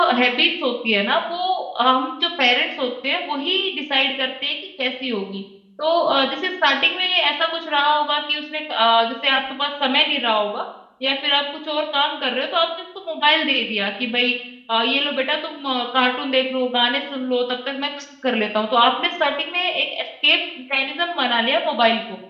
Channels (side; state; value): both; identical; correlation 1.00